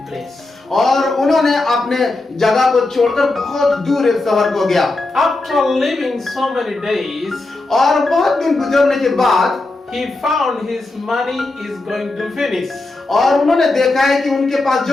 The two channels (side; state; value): right; quieter; 3.1 dB